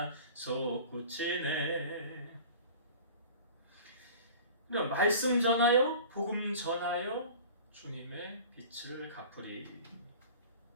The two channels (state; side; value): inverted; both; correlation -0.41